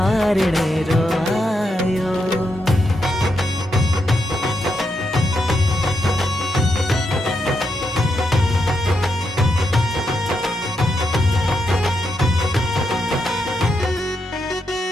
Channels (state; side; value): normal; both; correlation 0.82